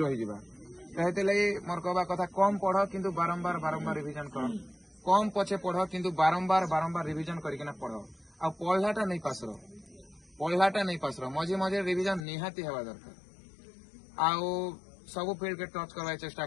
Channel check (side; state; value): right; drops out; at 12.2 s